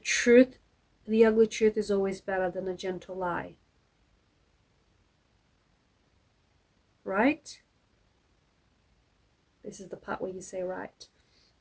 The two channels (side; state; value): both; identical; correlation 1.00